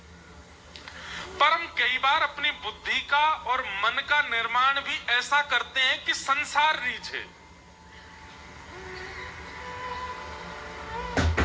पर हम कई बार अपनी बुद्धि का और मन का निर्माण भी ऐसा करते हैं कि संसार रीझे।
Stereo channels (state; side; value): identical; both; correlation 1.00